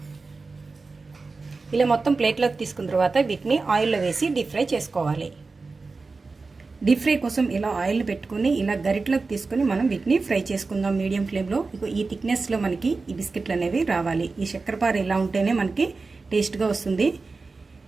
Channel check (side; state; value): left; quieter; 4.0 dB